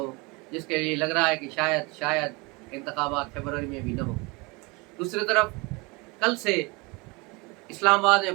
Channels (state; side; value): quieter; left; 26.8 dB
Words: जिसके लिए लग रहा है कि शायद इंतखाबात फरवरी में भी न हो। दूसरी तरफ कल से इस्लामाबाद